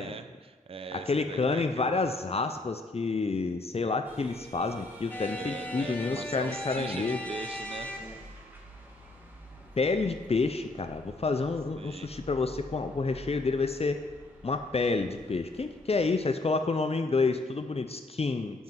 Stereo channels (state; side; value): quieter; right; 3.2 dB